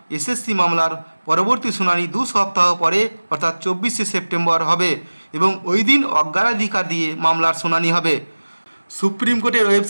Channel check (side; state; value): both; inverted; correlation -1.00